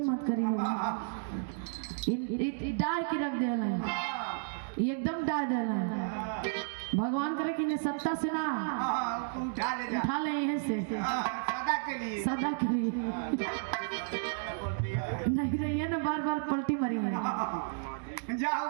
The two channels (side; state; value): left; silent; digital silence